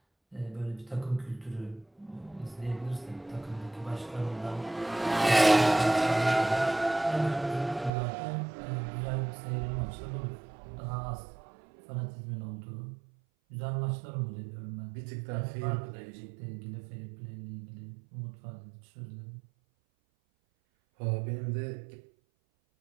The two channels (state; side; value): drops out; left; at 7.9 s